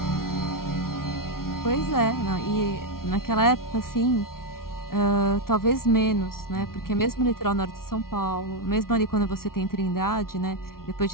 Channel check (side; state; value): right; late; 0.93 ms